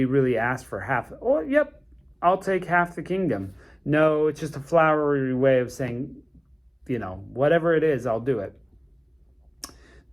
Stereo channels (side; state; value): both; identical; correlation 1.00